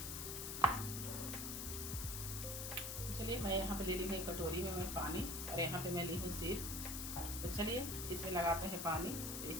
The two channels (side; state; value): left; noise; hiss, 4 dB below the sound